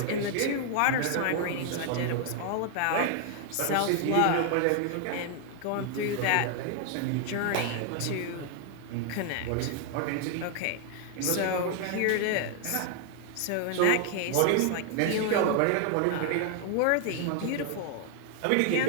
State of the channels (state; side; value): different; both; correlation 0.00